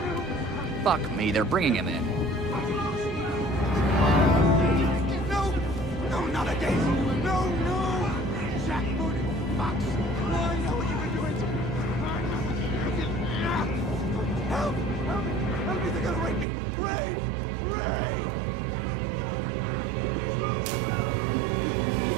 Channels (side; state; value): left; drops out; at 16.4 s